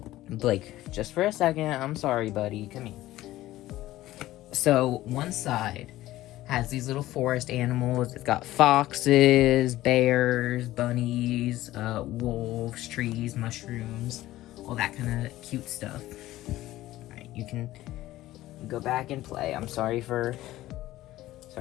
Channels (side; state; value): right; quieter; 15.7 dB